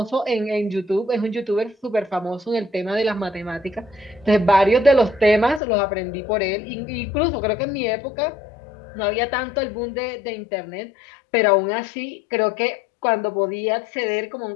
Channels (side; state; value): right; drops out; at 5.6 s